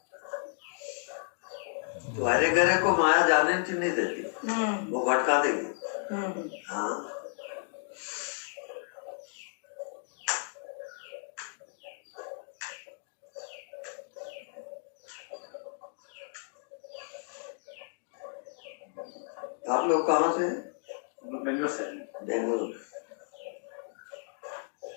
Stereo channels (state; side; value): silent; right; digital silence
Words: तो हरे गहरे को माया जाने नहीं देती, वो भटका देगी। हाँ, आप लोग कहाँ से हैं? बेंगलोर से। बेंगलोर।